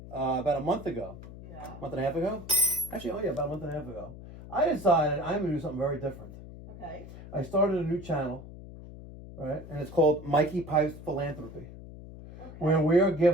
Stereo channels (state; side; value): noise; left; hum, 15 dB below the sound